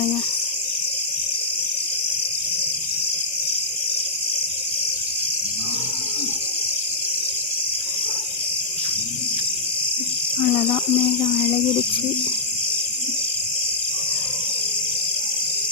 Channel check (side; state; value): right; quieter; 3.2 dB